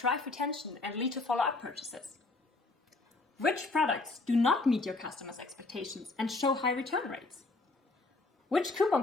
retention and lead to follow-up purchases? Which products do not meet your customers' expectations and show high return rates? Which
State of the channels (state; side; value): quieter; right; 3.4 dB